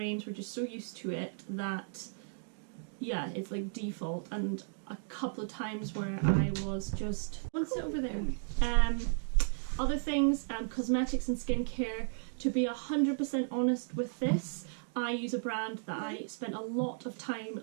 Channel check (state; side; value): silent; left; digital silence